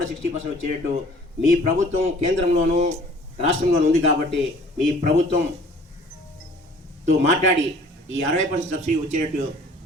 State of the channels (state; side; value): normal; both; correlation 0.52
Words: 60% వచ్చేటట్టు మీ ప్రభుత్వం కేంద్రంలోనూ రాష్ట్రంలోనూ ఉంది. కాబట్టి మీ ప్రభుత్వంతో మాట్లాడి ఈ 60% సబ్సిడీ వచ్చేటట్టు